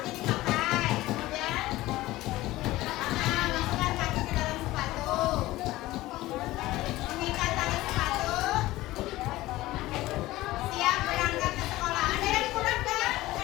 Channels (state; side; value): quieter; right; 17.5 dB